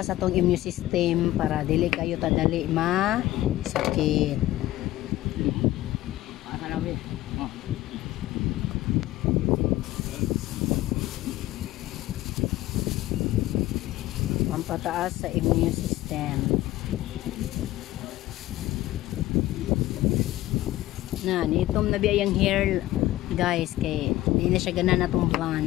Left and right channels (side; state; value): right; quieter; 15.8 dB